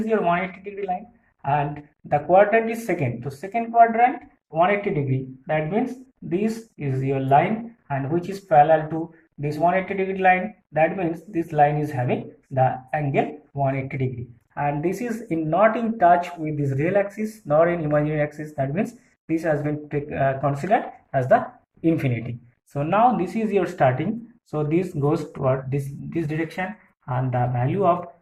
your 180 degree line and the quadrant is second. So second quadrant 180 degree, that means this is your line and which is parallel to this 180 degree line, that means this line is having the angle 180 degree, and this is not in touch with this real axis nor in imaginary axis, that means this has been considered as the infinity. So now this is your starting, so this goes toward this direction and the value of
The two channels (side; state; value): both; identical; correlation 1.00